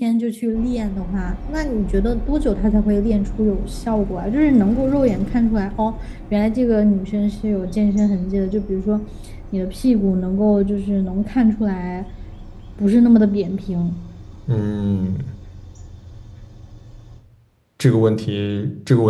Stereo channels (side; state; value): both; identical; correlation 1.00